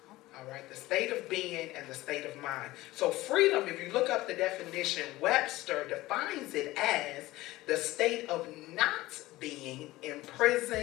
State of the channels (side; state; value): right; quieter; 18.0 dB